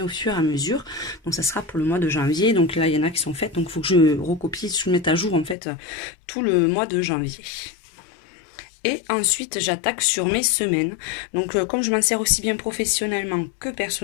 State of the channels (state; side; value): drops out; right; at 5.6 s